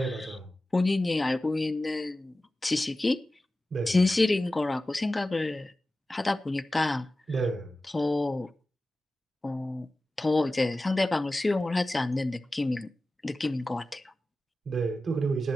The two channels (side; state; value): both; normal; correlation 0.95